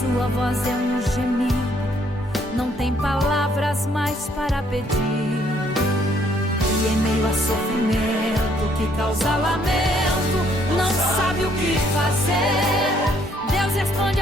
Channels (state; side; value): normal; both; correlation 0.67